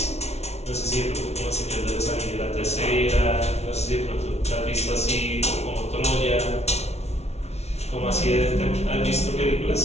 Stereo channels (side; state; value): right; late; 0.31 ms